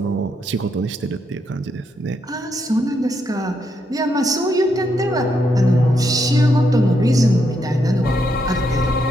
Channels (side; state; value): both; normal; correlation 0.79